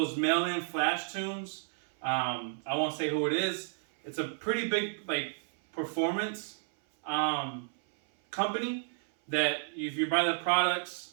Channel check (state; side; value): silent; left; 57 dB below the other